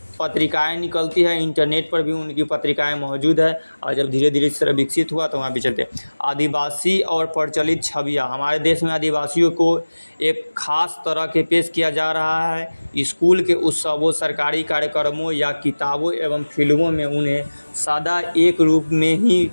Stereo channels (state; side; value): inverted; both; correlation -1.00